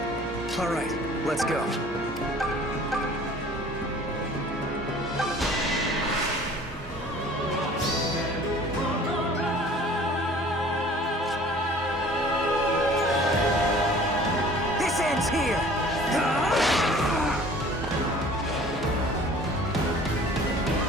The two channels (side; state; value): both; normal; correlation 0.49